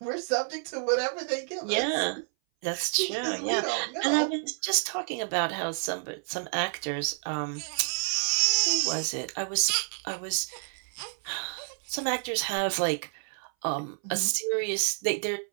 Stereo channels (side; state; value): left; silent; 58 dB below the other